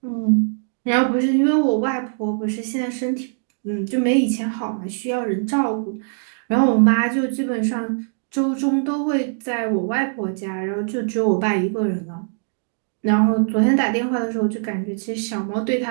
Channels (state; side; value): silent; left; digital silence